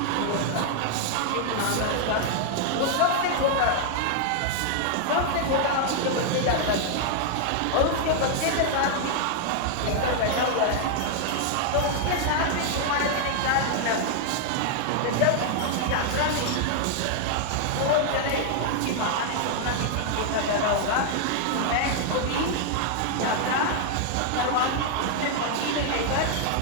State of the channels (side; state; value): both; different; correlation 0.00